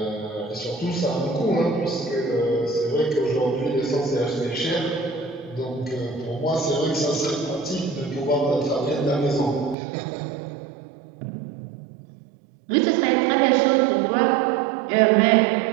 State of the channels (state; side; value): drops out; left; at 9.8 s